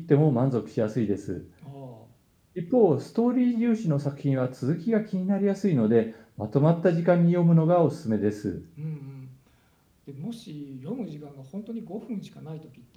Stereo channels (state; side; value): identical; both; correlation 1.00